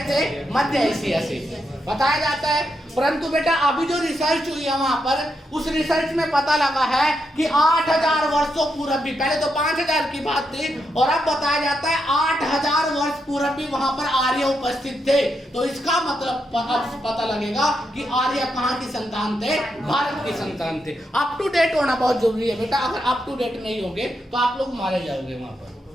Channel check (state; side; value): normal; both; correlation 0.82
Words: थे? मध्य एशिया से बताया जाता है। परंतु बेटा अभी जो रिसर्च हुई है वहां पर, उस रिसर्च में पता लगा है कि 8000 वर्षों पूर्व भी, पहले तो 5000 की बात थी और अब बताया जाता है 8000 वर्ष पूर्व भी वहां पर आर्य उपस्थित थे। तो इसका मतलब पता लगेगा कि आर्य कहाँ की संतान थे? भारत की संतान थे। अप टू डेट होना बहुत जरूरी है बेटा। अगर अप टू डेट नहीं होंगे तो आप लोग मारे जाओगे वहां पर।